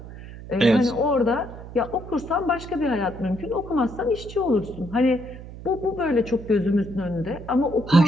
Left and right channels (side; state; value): right; noise; hum, 14 dB below the sound